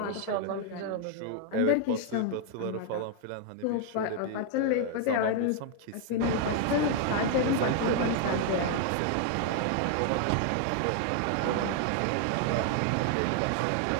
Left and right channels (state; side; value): different; both; correlation 0.00